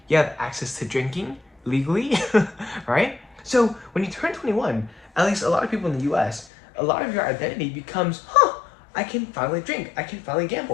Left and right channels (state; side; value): drops out; right; at 6.5 s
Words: You have access to drinking legally, right? So when you turn 21, at least a lot of people in the US, a lot of your identity becomes, I can finally drink, I can finally